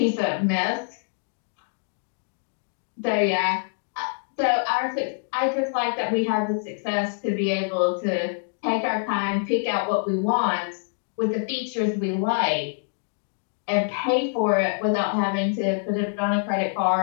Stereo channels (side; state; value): right; silent; digital silence